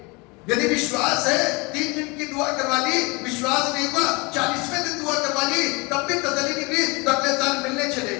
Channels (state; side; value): quieter; right; 27.3 dB